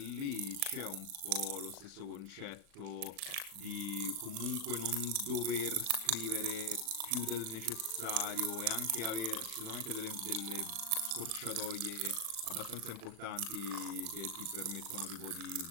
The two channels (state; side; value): late; left; 37 ms